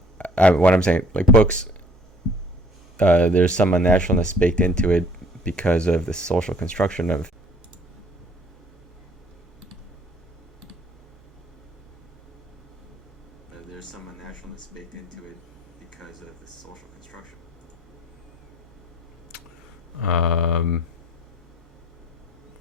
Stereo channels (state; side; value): normal; both; correlation 0.56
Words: what I'm saying, like books, there's some unnaturalness baked into it because of the social construction of. There's some unnaturalness baked into it because of the social construction.